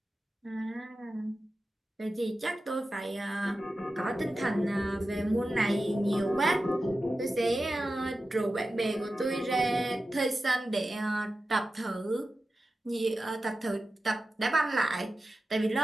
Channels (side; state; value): both; normal; correlation 0.93